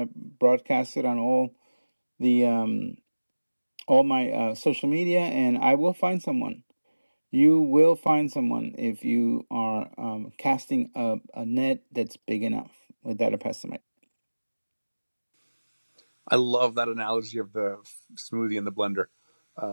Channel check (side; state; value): both; inverted; correlation -1.00